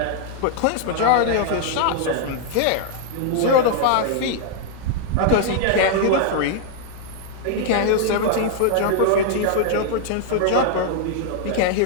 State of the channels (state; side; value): different; both; correlation 0.00